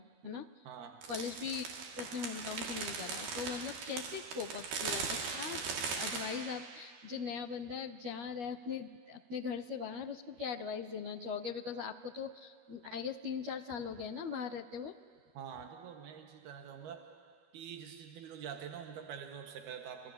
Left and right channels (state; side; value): late; left; 13 ms